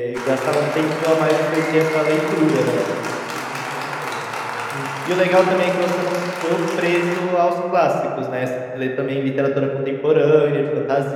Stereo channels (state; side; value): identical; both; correlation 1.00